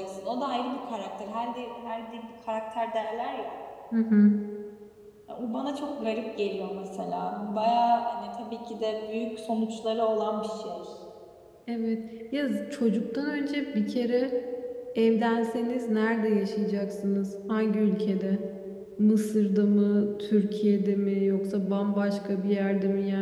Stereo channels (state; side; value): identical; both; correlation 1.00